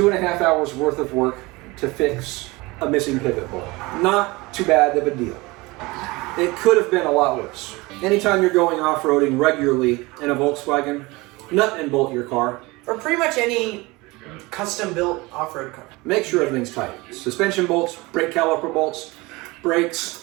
hours worth of work to fix a missing pivot bolt. Not too bad of a deal. It could have been a lot worse. Anytime you're going off-roading regularly in a Volkswagen, nut and bolt your car. Or pretty much any custom-built off-road car. Make sure everything's tight. Suspension bolts, brake caliper bolts, brakes,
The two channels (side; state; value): left; quieter; 23.1 dB